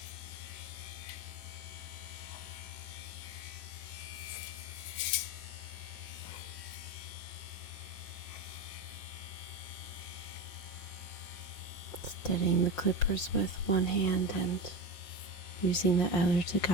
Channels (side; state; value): right; late; 5.5 ms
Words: Steadying the clippers with one hand and using the other to